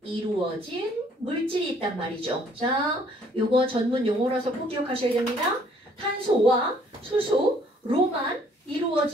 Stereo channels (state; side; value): normal; both; correlation 0.61